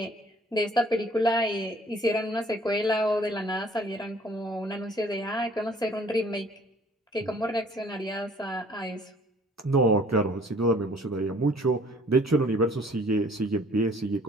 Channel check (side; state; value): both; normal; correlation 0.55